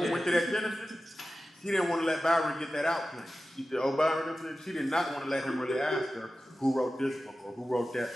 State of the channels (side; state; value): both; normal; correlation 0.94